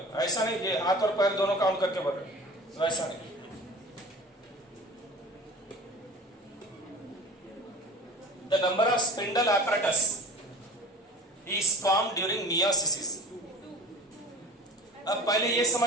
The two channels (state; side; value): normal; both; correlation 0.39